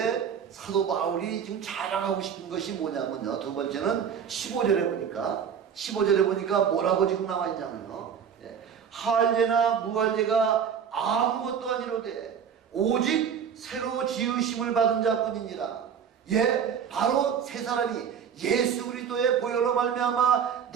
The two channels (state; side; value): quieter; left; 7.6 dB